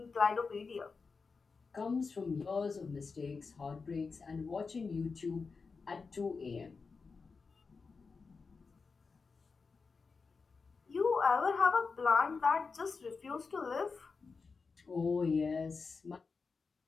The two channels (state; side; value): quieter; right; 4.7 dB